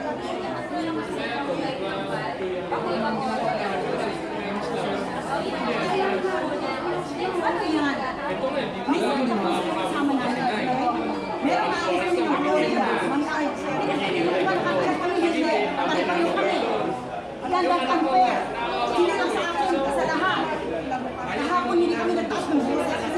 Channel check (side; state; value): both; identical; correlation 1.00